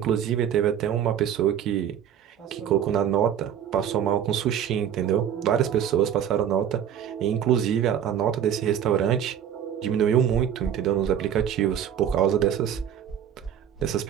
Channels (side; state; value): left; quieter; 9.4 dB